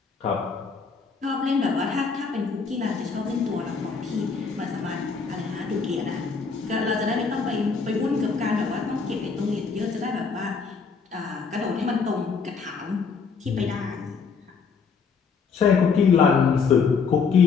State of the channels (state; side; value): quieter; right; 5.4 dB